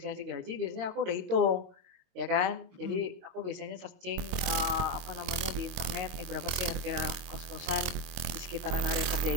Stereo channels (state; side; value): late; left; 23 ms